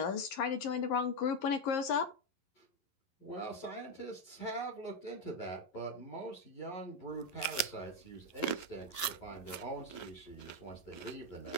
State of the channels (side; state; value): right; late; 11 ms